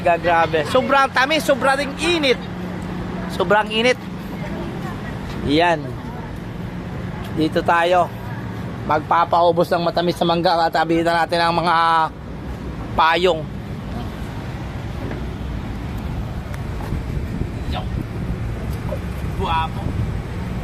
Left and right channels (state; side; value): identical; both; correlation 1.00